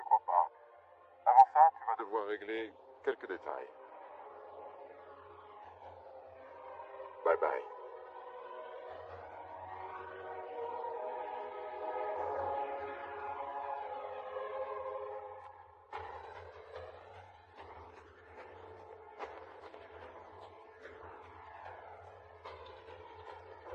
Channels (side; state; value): both; identical; correlation 1.00